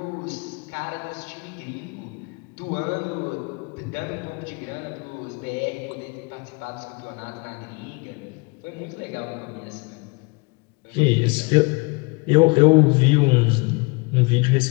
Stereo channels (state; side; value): quieter; right; 29.0 dB